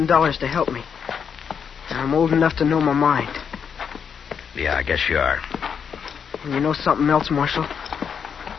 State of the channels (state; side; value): quieter; right; 7.0 dB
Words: to help me. And I'm old enough to know my mind. Yeah, I guess you are. And you know something else, Marshal?